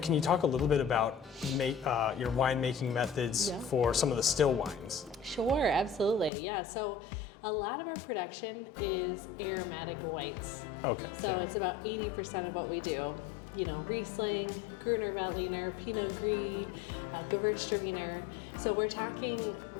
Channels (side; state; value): right; drops out; at 6.3 s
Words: you talk a little bit about your winemaking methods for some of the still wines? Sure, absolutely. Yeah, so a lot of our production is aromatic whites. Okay. So it's about 80% of what we do. Riesling, Gruner Veltliner, Pinot Gris, Gewürztraminer. So we're talking